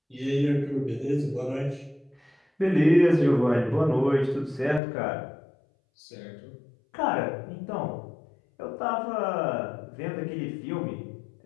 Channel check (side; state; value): right; drops out; at 4.8 s